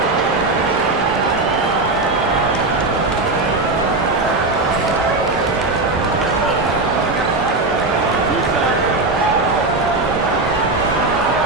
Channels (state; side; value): quieter; left; 3.2 dB